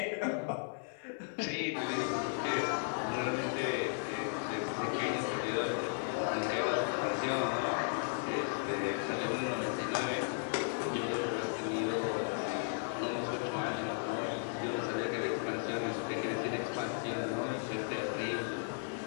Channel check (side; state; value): right; silent; 54 dB below the other